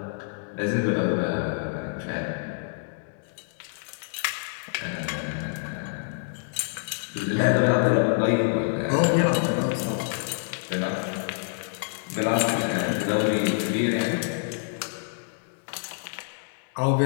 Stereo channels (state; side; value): silent; right; digital silence